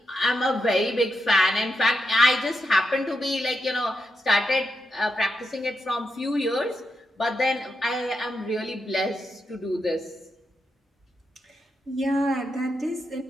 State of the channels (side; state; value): both; normal; correlation 0.84